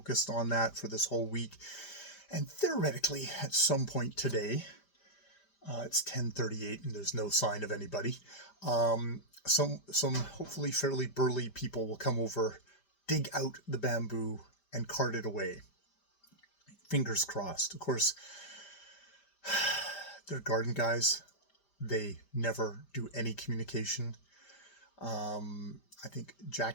on that for this whole week. And theoretically, at some point today, it's 10:38 and there's no sign of anybody. Some hopefully fairly burly people will come over, dig out the bamboo, and cart it away. Fingers crossed. Of course, they're garden guys. They never do any communication. I think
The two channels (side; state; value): right; late; 5.1 ms